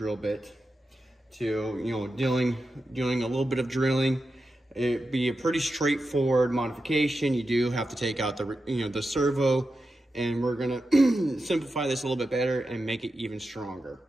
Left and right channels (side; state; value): both; normal; correlation 0.90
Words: bit to, doing a little bit of drilling. It'd be a pretty straightforward modification. You do have to take out the servo, and we're gonna simplify this a little bit better and make it even stronger.